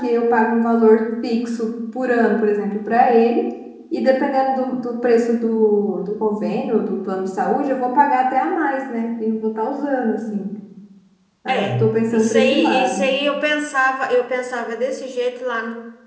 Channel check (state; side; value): identical; both; correlation 1.00